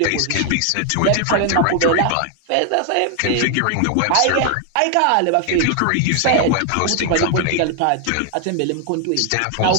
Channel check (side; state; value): both; different; correlation 0.00